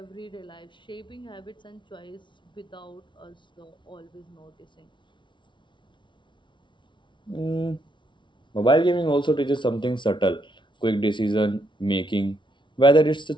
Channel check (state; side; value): late; right; 0.24 ms